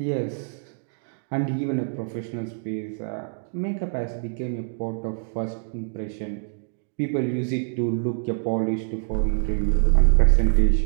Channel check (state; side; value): silent; left; digital silence